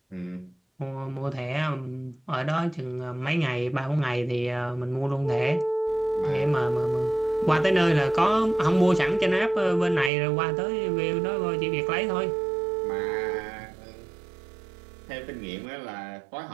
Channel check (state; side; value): drops out; left; at 10.1 s